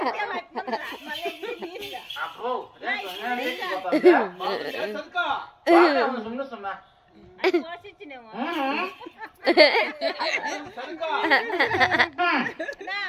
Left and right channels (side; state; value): both; identical; correlation 1.00